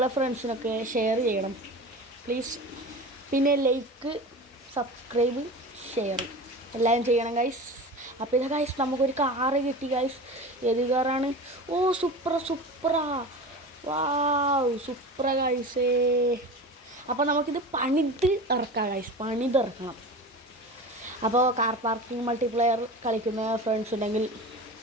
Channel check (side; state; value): both; normal; correlation 0.32